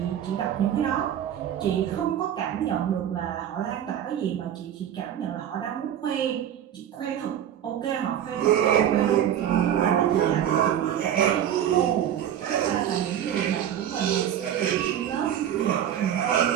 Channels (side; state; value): left; quieter; 10.3 dB